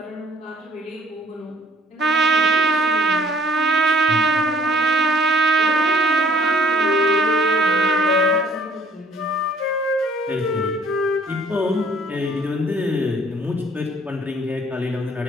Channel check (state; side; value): normal; both; correlation 0.57